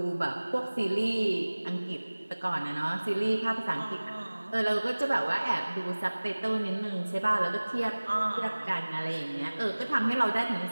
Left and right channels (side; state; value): both; inverted; correlation -1.00